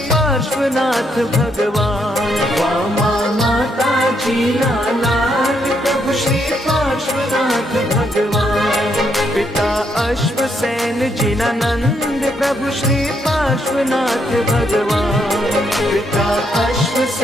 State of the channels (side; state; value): both; normal; correlation 0.76